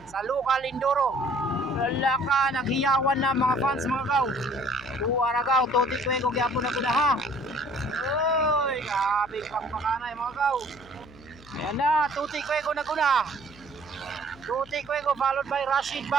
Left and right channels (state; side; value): noise; left; hum, 23 dB below the sound